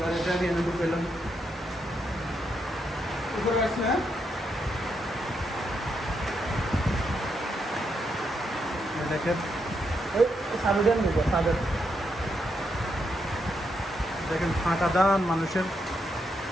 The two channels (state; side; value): normal; both; correlation 0.80